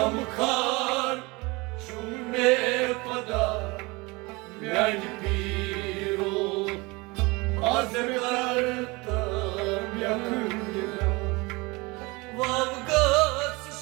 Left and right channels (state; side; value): quieter; left; 24.8 dB